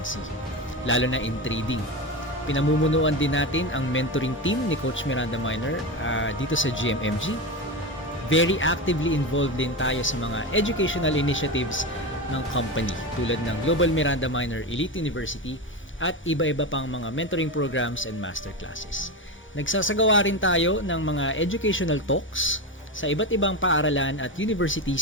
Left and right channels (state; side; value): normal; both; correlation 0.19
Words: lalo na in trading. Pinamumunuan din natin ang mentoring team ni Coach Miranda Minor dito sa GMMG. Very actively involved din tayo sa mga educational initiatives ng company tulad ng Global Miranda Minor Elite University at iba-iba pang mga mentoring programs and masterclasses. Nagsasagawa rin tayo ng mga educational talks sa iba't ibang paaralan at